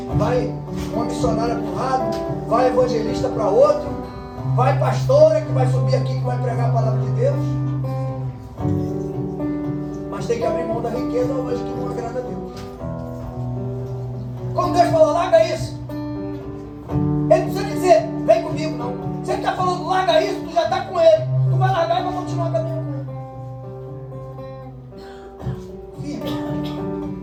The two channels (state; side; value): identical; both; correlation 1.00